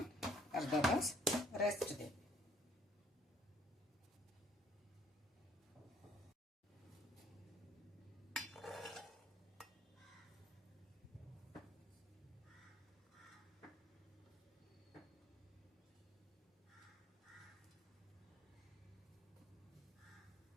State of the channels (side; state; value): both; normal; correlation 0.62